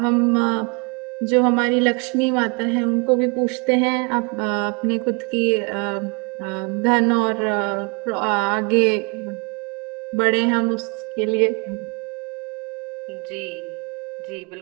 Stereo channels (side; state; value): left; quieter; 32.7 dB